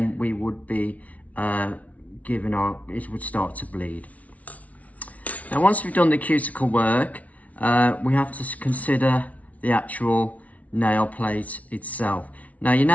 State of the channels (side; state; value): right; late; 0.068 ms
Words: we would be it would start to bleed. Now once we've done the cuticle work, we have to consider the actual nail plate itself. Now your